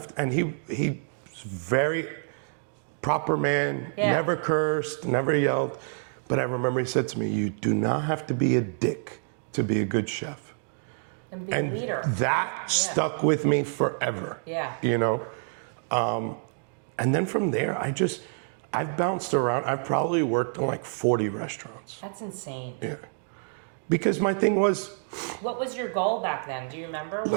to, and he's very proper man, never cursed, never yelled. But I remember he said to me, you do not have to be a dick to be a good chef. And be a leader. That stuck with me forever. Yeah. You know? And then from there, I've bounced around. I've probably worked in like 40 restaurants. That's insane. Yeah. Because my thing was... What was your goal back then? Do you remember?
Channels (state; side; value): silent; left; 60 dB below the other